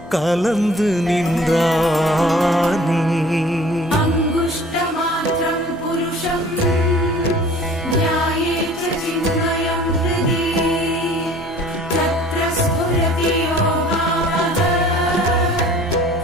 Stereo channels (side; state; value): both; normal; correlation 0.49